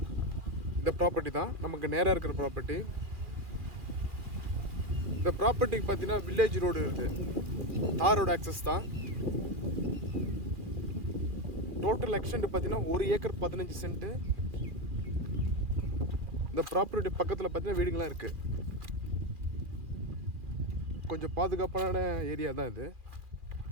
இந்த ப்ராப்பர்ட்டி தான், நமக்கு நேராக இருக்கிற ப்ராப்பர்ட்டி. இந்த ப்ராப்பர்ட்டிக்கு பார்த்தீங்கன்னா வில்லேஜ் ரோடு இருக்குது, தார் ரோடு ஆக்சஸ் தான். டோட்டல் எக்ஸ்டெண்ட் பார்த்தீங்கன்னா 1 ஏக்கர் 15 சென்ட். இந்த ப்ராப்பர்ட்டி பக்கத்தில் பார்த்தீங்கன்னா வீடுங்களாம் இருக்குது. கொஞ்சம் பாதுகாப்பான ஏரியா தான் இது.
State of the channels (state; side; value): late; left; 2.4 ms